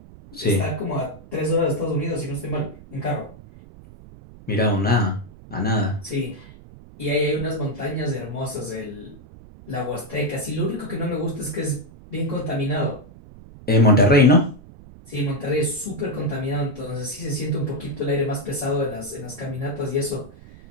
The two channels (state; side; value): noise; right; rumble, 19 dB below the sound